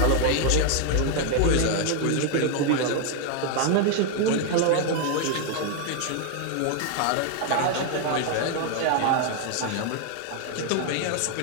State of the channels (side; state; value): both; different; correlation 0.00